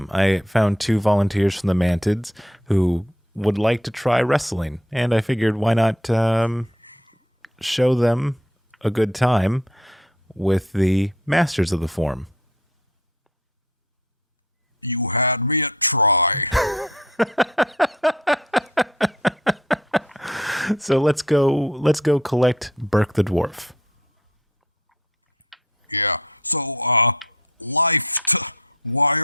I found 2 volunteers from the Mantids who would like to try wrestling, and I figured why not show them a good time with the masters of the form. You had me at try. So let's go collect Burke the dwarf. Yeah. So, why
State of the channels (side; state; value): both; normal; correlation 0.57